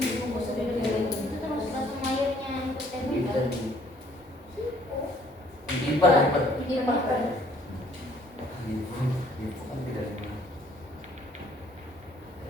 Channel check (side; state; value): both; normal; correlation 0.61